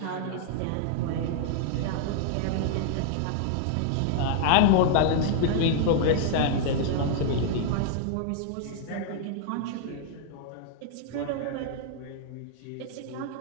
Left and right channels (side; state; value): both; different; correlation -0.01